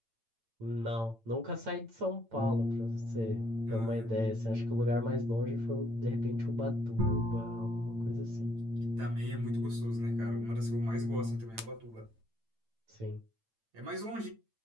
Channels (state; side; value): late; left; 8.9 ms